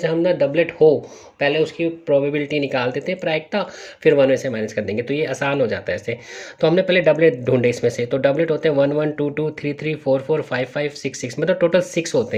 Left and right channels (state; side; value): identical; both; correlation 1.00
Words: हम ना डबलेट हो पहले उसकी प्रोबेबिलिटी निकाल देते हैं प्रायिकता, फिर 1 में से माइनस कर देंगे, तो ये आसान हो जाता है ऐसे। तो हमने पहले डबलेट ढूंढे इसमें से, तो डबलेट होते हैं 1 1 2 2 3 3 4 4 5 5 6 6, मतलब टोटल 6 होते